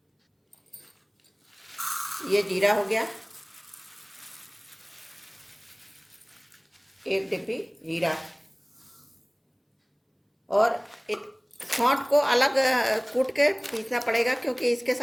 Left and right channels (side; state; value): both; identical; correlation 1.00